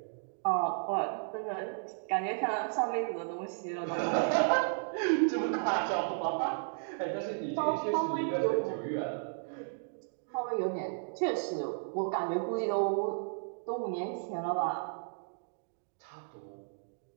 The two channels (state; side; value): silent; left; digital silence